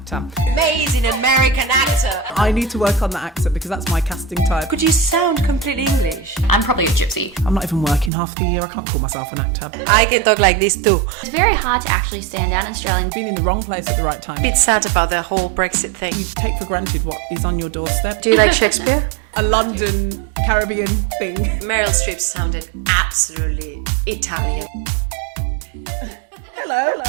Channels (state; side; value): drops out; left; at 8.1 s